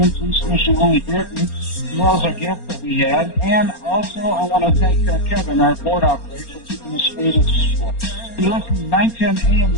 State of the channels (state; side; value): late; right; 4.3 ms